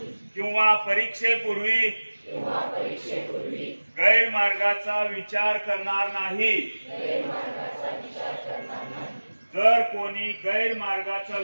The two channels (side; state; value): both; inverted; correlation -1.00